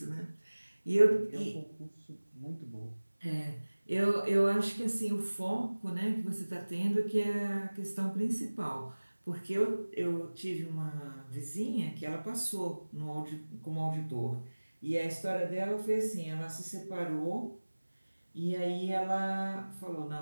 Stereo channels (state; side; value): inverted; both; correlation -1.00